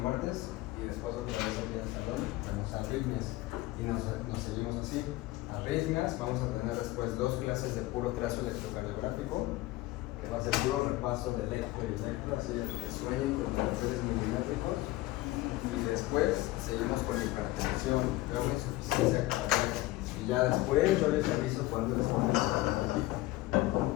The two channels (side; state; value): right; quieter; 18.1 dB